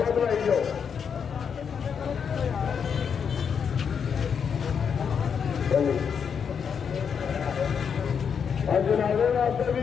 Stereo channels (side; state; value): right; quieter; 6.9 dB